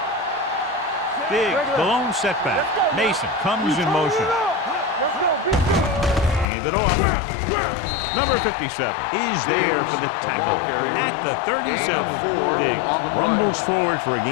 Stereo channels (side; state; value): right; drops out; at 6.5 s